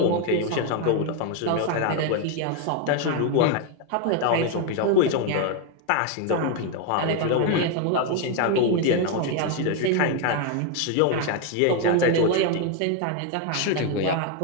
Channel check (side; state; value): both; different; correlation 0.01